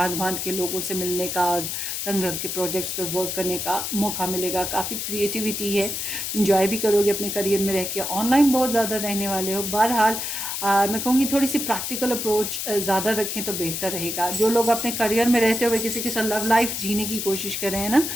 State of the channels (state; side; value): noise; left; hiss, 3 dB below the sound